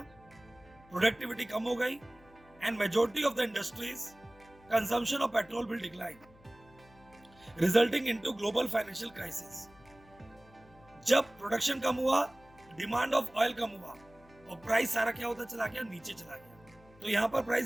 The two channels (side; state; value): left; noise; hum, 25 dB below the sound